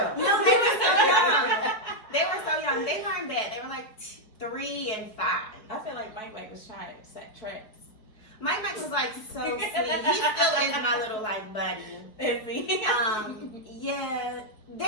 they were so young. They weren't bad. They were like 3 and 5. I feel like Mike was trying to set traps. Mike was like so sweet. He still is my little like buddy. Is he? Yeah.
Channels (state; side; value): late; right; 4.7 ms